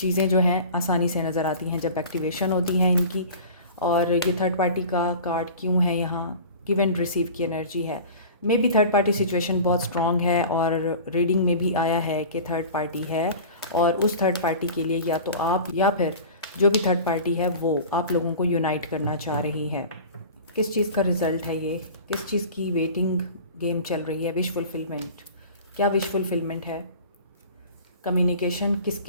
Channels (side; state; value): both; inverted; correlation -0.38